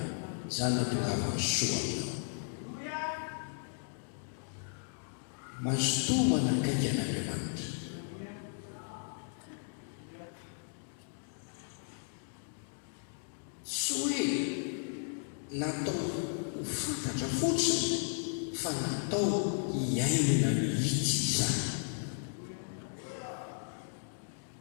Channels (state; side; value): silent; right; digital silence